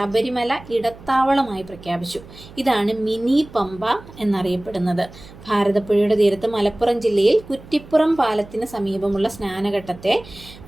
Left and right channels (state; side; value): noise; right; hum, 19 dB below the sound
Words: ഇടത്താവളമായി പ്രഖ്യാപിച്ചു. ഇതാണ് മിനി പമ്പ എന്നറിയപ്പെടുന്നത്. ഭാരതപ്പുഴയുടെ തീരത്ത് മലപ്പുറം ജില്ലയിൽ കുറ്റിപ്പുറം പാലത്തിന് സമീപമുള്ള സ്നാനഘട്ടത്തെ